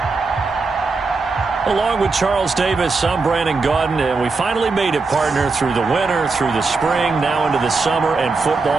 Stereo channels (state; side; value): quieter; left; 4.1 dB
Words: Along with Charles Davis, I'm Brandon Gaudin, and we finally made it, partner, through the winter, through the spring, now into the summer, and